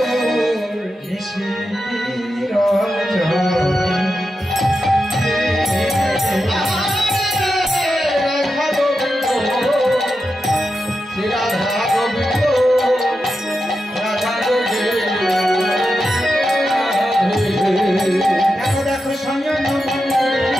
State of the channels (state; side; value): normal; both; correlation 0.89